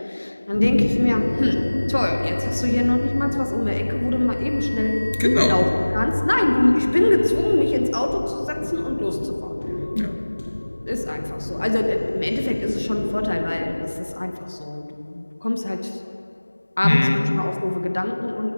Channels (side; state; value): both; inverted; correlation -1.00